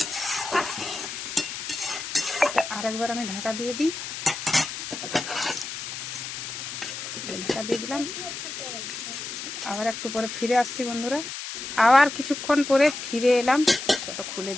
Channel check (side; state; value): left; noise; hiss, 7 dB below the sound